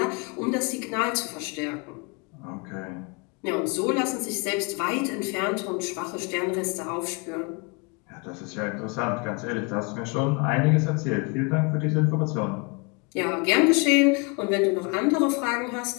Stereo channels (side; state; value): right; quieter; 31.0 dB